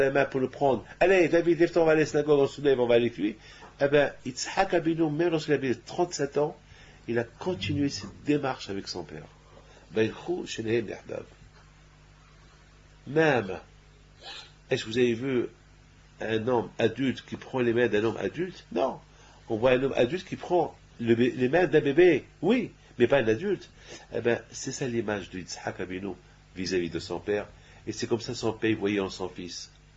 main pour le prendre. Allez, David, lève-toi, on va à la synagogue, on se lève, on va avec lui. Eh bien, Yitzhak Abinu, même lorsqu'il avait 37 ans, il a continué cette démarche avec son père. Même, est-ce que vous avez vu un homme adulte qui prend les mains d'un homme adulte? Non. On voit un homme adulte qui prend les mains d'un bébé. Oui, mais pas un adulte. Eh bien, c'est ça l'image de Yitzhak Abinu vis-à-vis de son père. Et c'est comme ça son père voyait en son fils.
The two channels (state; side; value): identical; both; correlation 1.00